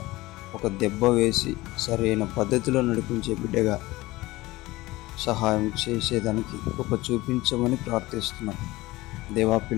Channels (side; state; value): right; quieter; 19.4 dB